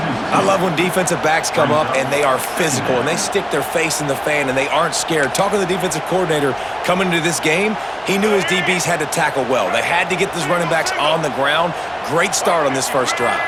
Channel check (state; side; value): identical; both; correlation 1.00